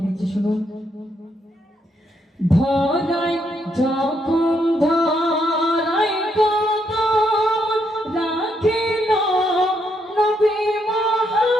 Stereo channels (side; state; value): both; normal; correlation 0.76